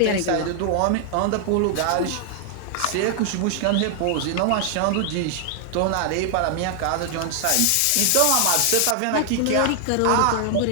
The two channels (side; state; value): both; different; correlation 0.00